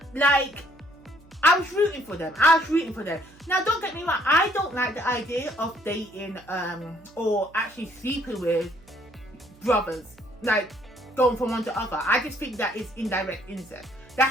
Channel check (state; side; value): noise; right; hum, 26 dB below the sound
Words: Like, I was rooting for them. Now, don't get me wrong. I don't like the idea of dating or actually sleeping with brothers, like going from one to other. I just think that is indirect incest.